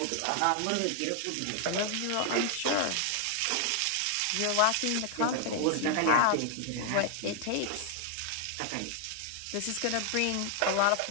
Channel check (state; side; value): different; both; correlation 0.00